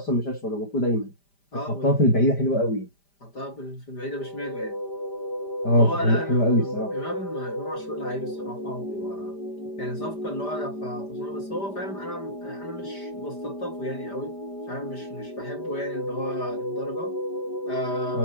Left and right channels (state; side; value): late; right; 5.0 ms